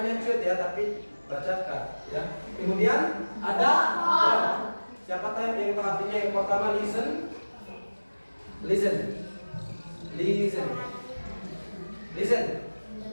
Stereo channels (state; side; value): inverted; both; correlation -1.00